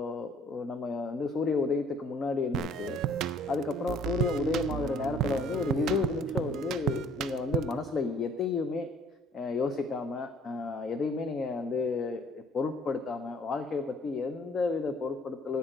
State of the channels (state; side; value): normal; both; correlation 0.57